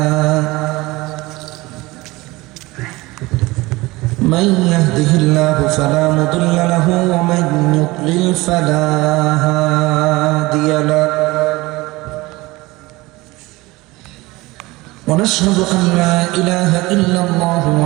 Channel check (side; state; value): left; quieter; 21.1 dB